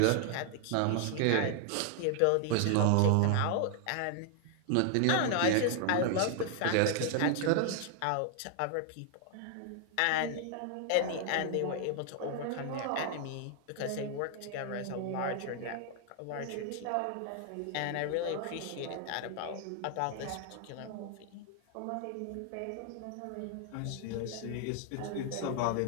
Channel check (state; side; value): different; both; correlation 0.00